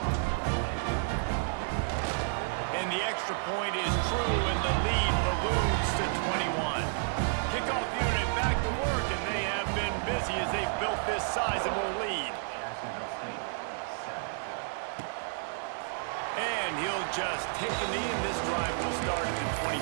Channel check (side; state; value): left; silent; digital silence